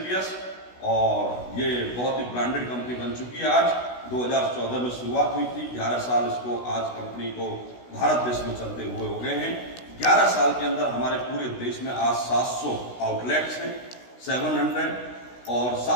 और ये बहुत ही ब्रांडेड कंपनी बन चुकी है। आज 2014 में शुरुआत हुई थी, 11 साल इसको आज कंपनी को भारत देश में चलते हुए हो गए हैं। 11 साल के अंदर हमारे पूरे देश में आज 700 आउटलेट्स हैं, 700, और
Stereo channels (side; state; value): right; late; 16 ms